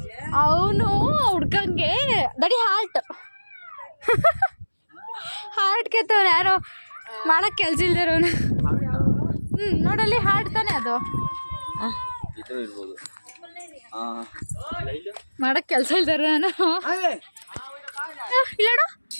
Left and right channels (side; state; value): both; inverted; correlation -1.00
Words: ಅವನು ಹುಡ್ಕಂಗೆ ದಡಿ ಹಾರ್ಟ್ ಕೆತ್ತವನು. ಯಾರೋ ಮಾಡಕ್ ಕೆಲ್ಸ ಇಲ್ದಿರೋನು. ನೋಡಲ್ಲಿ ಹಾರ್ಟ್ ತಾನೆ ಅದು. ಮಾಡಕ್ ಕೆಲ್ಸ ಇಲ್ದಾರ ನಾನು. ಇಲ್ಲೋಡು,